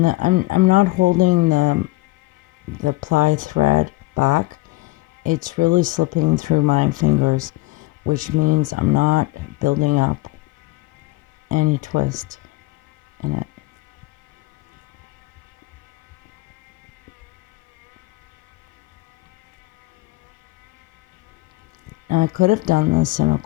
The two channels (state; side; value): quieter; right; 20.8 dB